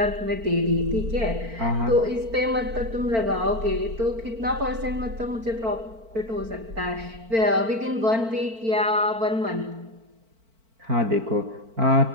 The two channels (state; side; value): late; left; 4.5 ms